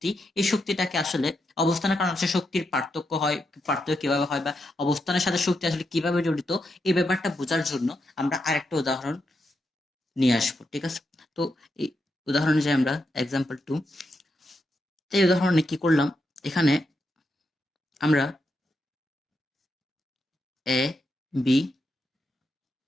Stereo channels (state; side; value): normal; both; correlation 0.83